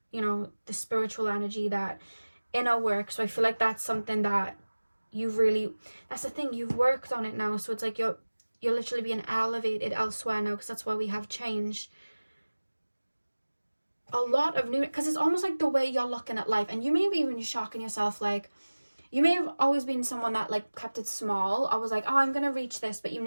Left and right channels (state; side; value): inverted; both; correlation -1.00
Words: the spiritual energy, that inner work. So I feel like that's something that that's the thing, you've worked on it now. So it's like you're literally being elevated elsewhere now, because that's why we have change. A lot of new, because it's almost like the way you're looking at life, and you may be even shocking yourself, like, you may have always been someone that like kept it small. I was like, oh, I'm gonna reach this, but you